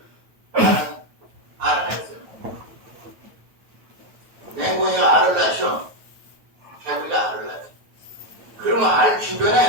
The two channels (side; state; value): left; late; 9.1 ms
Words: 나는 알아냈어요. 맹꽁이가 알을 낳죠. 개구리가 알을 낳죠. 그러면 알